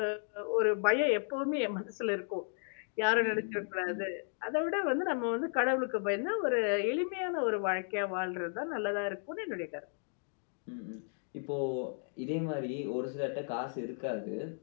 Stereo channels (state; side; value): silent; right; 55 dB below the other